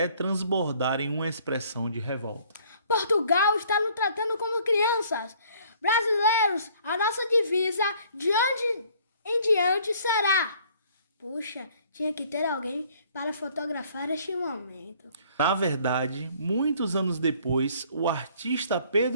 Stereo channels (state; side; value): inverted; both; correlation -0.58